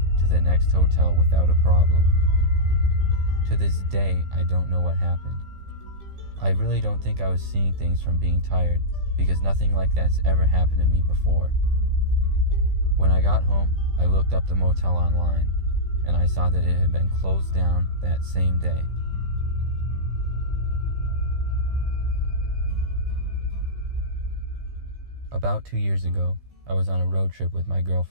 to the next hotel without a problem. To this day, I don't know what happened. I really don't think I was seeing things from being tired, because nothing like that's ever happened to me before. When I got home, I looked up the motel online, and I saw that it had been closed down that same day. About 2 years ago, I was on a road trip with my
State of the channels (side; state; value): left; late; 15 ms